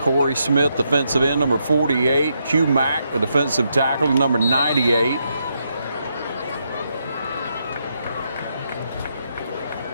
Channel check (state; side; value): inverted; both; correlation -0.80